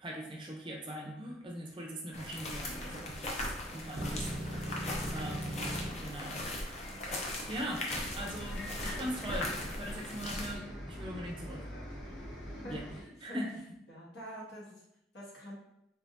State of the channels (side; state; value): both; normal; correlation 0.56